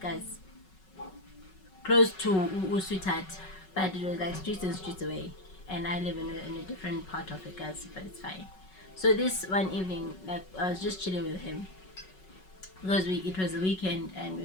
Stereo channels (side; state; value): right; late; 5.4 ms